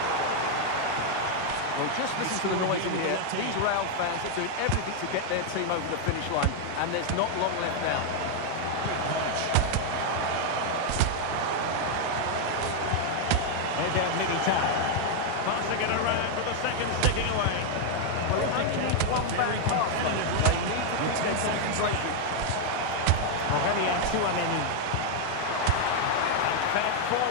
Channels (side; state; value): both; different; correlation 0.00